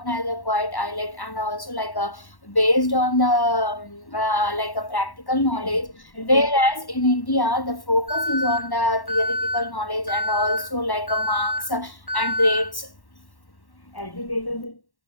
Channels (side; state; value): right; late; 1.1 ms